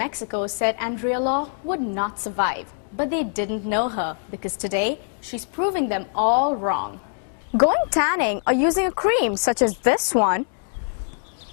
said Andrea Law would not survive, but they didn't know her because today she's proving them all wrong. Going tanning or using a cream such as this one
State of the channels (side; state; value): right; silent; digital silence